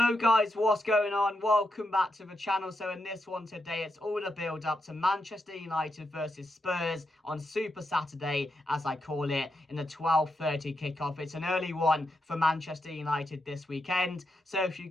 guys, what's going on? Welcome back to the channel. So in this one today, it's all the build up to Manchester United versus Spurs on Super Saturday, as I call it, in the 12:30 kickoff. It's an early one for Manchester United this weekend. So if you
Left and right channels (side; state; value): both; normal; correlation 0.84